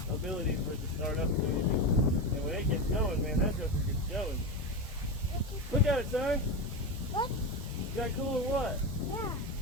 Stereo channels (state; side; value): normal; both; correlation 0.17